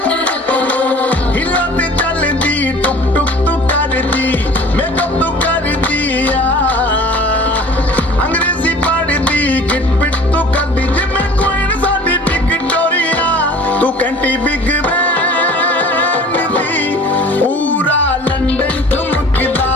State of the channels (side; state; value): both; normal; correlation 0.46